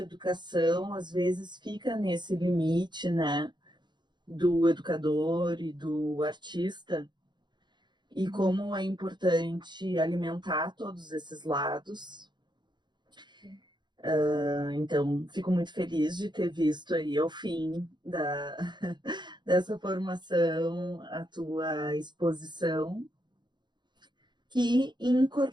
educação, às vezes fica nesse limite, né, do educador e do artista, e como é importante alimentar todos esses lados. Então, fico muito feliz de ter visto aí ao fim dessa formação a tua exposição, que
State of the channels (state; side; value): late; left; 0.21 ms